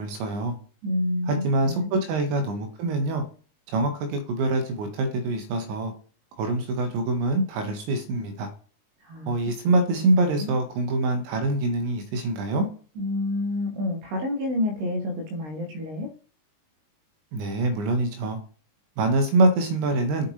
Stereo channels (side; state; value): left; late; 19 ms